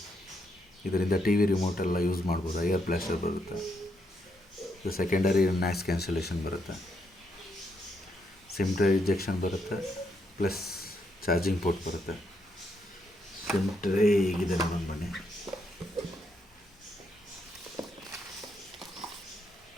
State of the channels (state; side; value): normal; both; correlation 0.77